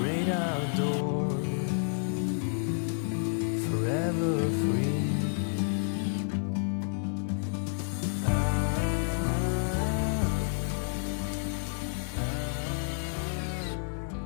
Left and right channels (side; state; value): right; silent; digital silence